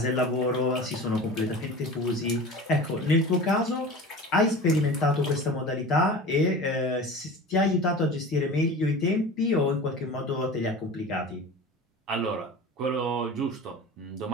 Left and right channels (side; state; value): both; normal; correlation 0.35